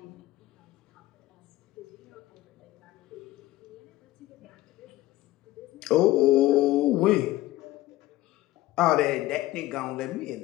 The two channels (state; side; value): quieter; right; 16.7 dB